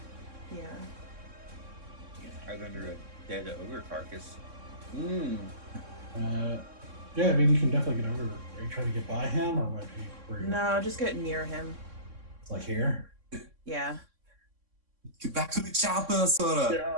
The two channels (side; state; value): left; late; 3.6 ms